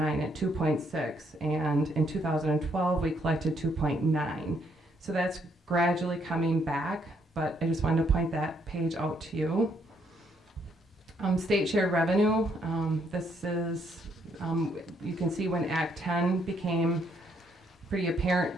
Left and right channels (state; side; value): normal; both; correlation 0.72